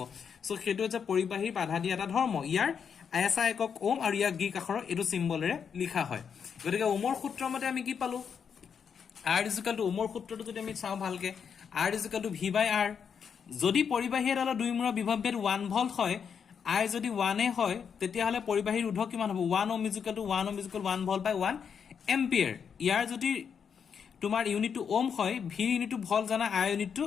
সো হেতু হৈছে পৰিবাহী বাধা দিয়া এটা ধৰ্ম ইয়াৰ আইএসআই একক ওম আৰু ইয়াক গ্ৰীক আখৰৰ এটো সিম্বলেৰে লিখা হয় গতিকে ওমৰ সূত্ৰৰ মতে আমি কি পালো R is equal to Omar সূত্ৰটো যদি আমি চাও ভালকে R is equal to V by R যদি পৰিবাহী এডালৰ দুইমূৰৰ বিভৱভেদ 1 ভোল্ট হয় I যদি 1 এ হয় তেতিয়া হলে পৰিবাহী ৰোধক কিমান হ'ব 1 ohm is equal to 1 ohm is equal to 1 volt by 1 ampere ইয়াৰ যদি তোমাৰ ইউনিট টু ওম হয় V ইউনিট টু ভোল্ট জানা I unit to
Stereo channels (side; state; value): right; quieter; 7.0 dB